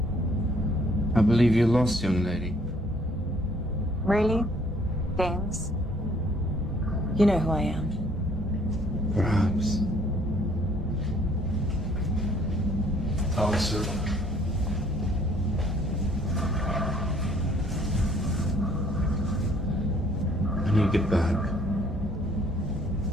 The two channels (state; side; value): normal; both; correlation 0.61